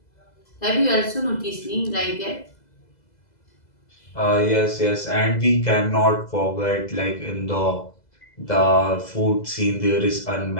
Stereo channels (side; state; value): right; late; 2.0 ms